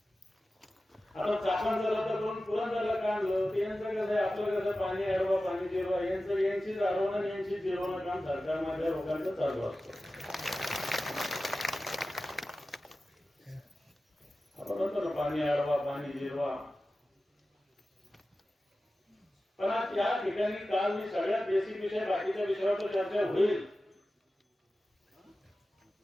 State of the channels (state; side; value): normal; both; correlation 0.95